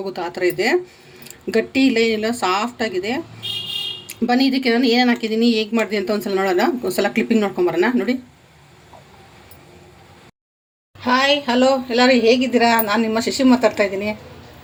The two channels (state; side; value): identical; both; correlation 1.00